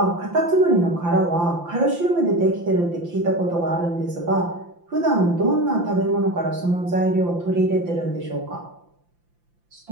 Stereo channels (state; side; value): late; left; 5.8 ms